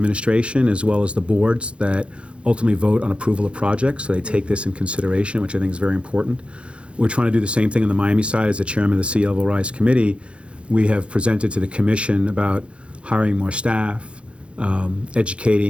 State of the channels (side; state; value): left; late; 0.059 ms